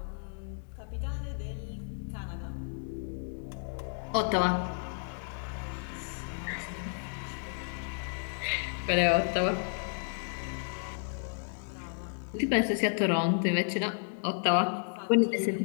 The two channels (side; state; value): right; silent; digital silence